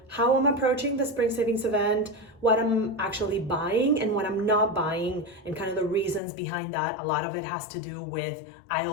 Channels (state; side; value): drops out; right; at 6.2 s